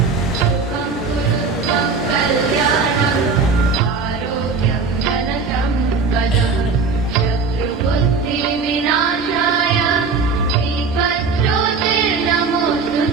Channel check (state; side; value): quieter; left; 4.7 dB